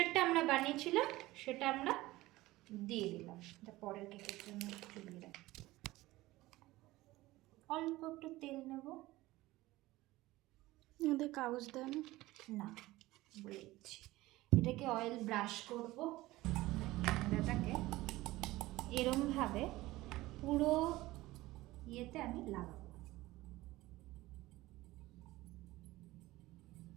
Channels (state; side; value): quieter; left; 18.3 dB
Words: আমরা বানিয়েছিলাম সেটা আমরা দিয়ে দিলাম। এটা পরের কেকের জন্য চুলিয়ে রাখি। অল্প একটু তেল নেব। ওদের কাগজ দেয় না? না, বলে দিচ্ছি। এটাকে অয়েল ব্রাশ করব। এটাকে এরমভাবে পুরো ইয়েতে আমি লাগাবো।